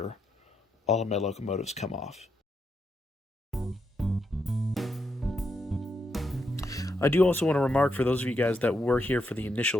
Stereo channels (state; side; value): normal; both; correlation 0.81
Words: all of my locomotives come off. I do also want to remark, for those of you guys that were here for the